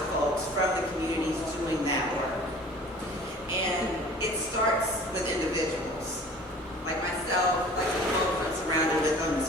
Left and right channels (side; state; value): both; normal; correlation 0.47